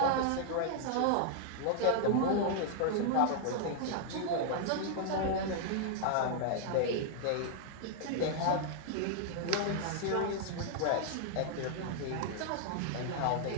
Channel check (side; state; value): both; different; correlation 0.00